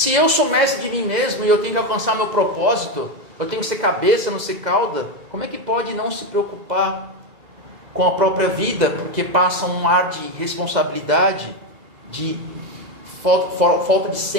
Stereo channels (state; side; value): late; left; 2.0 ms